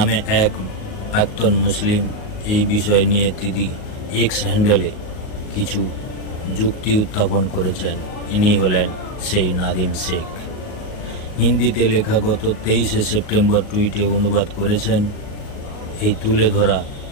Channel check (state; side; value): late; right; 38 ms